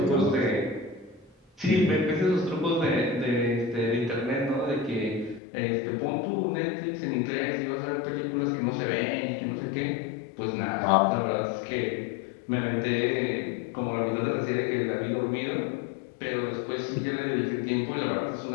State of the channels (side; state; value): right; drops out; at 5.4 s